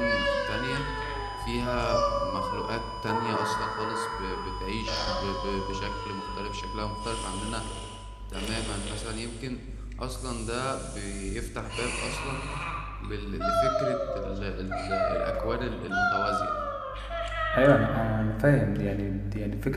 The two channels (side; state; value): both; identical; correlation 1.00